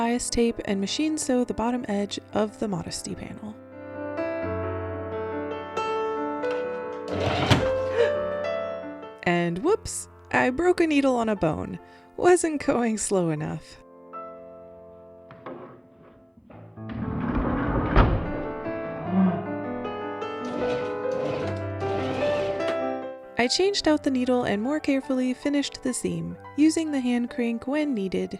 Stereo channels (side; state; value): both; identical; correlation 1.00